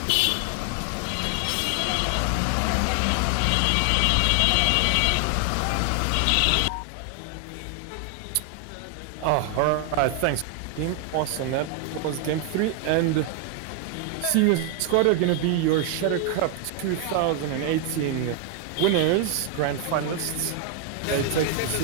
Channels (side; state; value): both; different; correlation 0.00